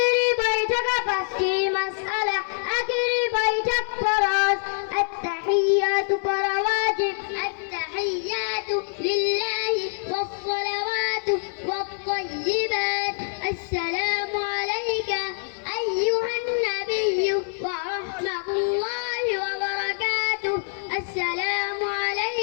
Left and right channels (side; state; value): right; silent; 62 dB below the other